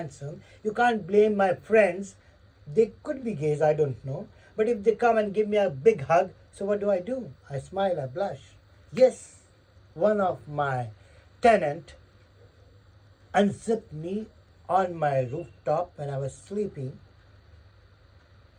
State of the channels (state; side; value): identical; both; correlation 1.00